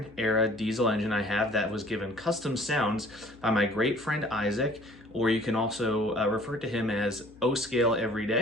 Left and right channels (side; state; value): left; noise; hum, 25 dB below the sound